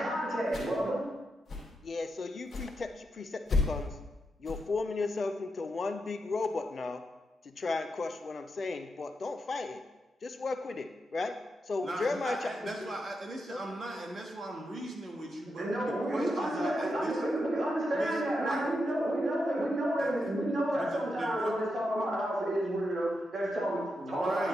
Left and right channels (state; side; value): normal; both; correlation 0.85